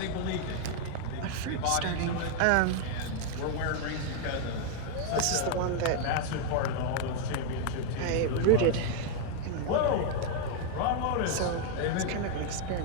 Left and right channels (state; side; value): different; both; correlation 0.00